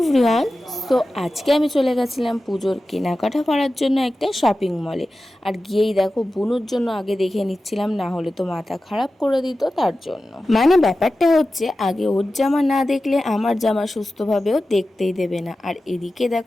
তো আজকে আমি চলে গেছিলাম পুজোর কেনাকাটা করার জন্য একটা শপিং মলে। আর গিয়েই দেখো বুনুর জন্য আগে দেখে নিচ্ছিলাম, না হলে তো মাথা খারাপ করে দিত তার জন্য। মানে ব্যাপারটা হচ্ছে আগে ওর জামা না দেখলে আমার জামা সুস্থভাবেও দেখতেই দেবে না। আর এদিকে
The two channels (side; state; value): both; normal; correlation 0.94